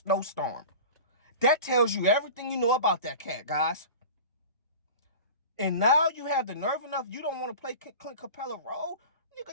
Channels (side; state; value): both; inverted; correlation -0.35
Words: That tells you everything you know about that cat, guys. And now you have the nerve enough, you don't want to play Clint Capella role?